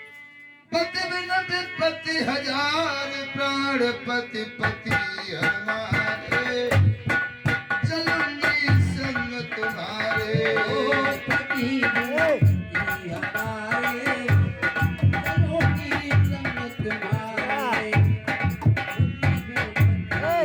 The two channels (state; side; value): identical; both; correlation 1.00